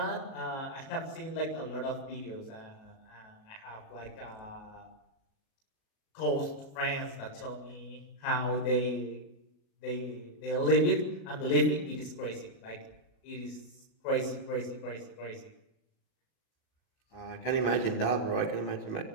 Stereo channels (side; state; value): right; late; 37 ms